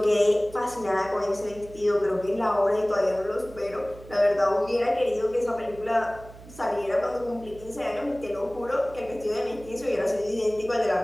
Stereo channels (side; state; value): right; noise; hum, 18 dB below the sound